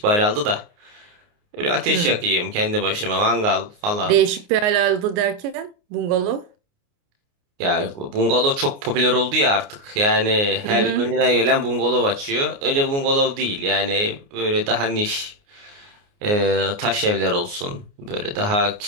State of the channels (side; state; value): left; late; 29 ms